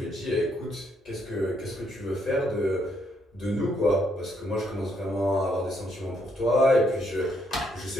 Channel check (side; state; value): both; normal; correlation 0.73